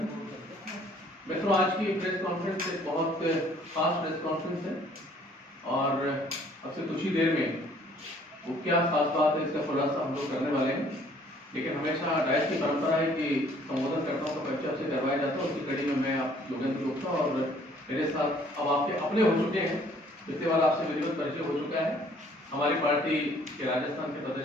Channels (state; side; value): normal; both; correlation 0.59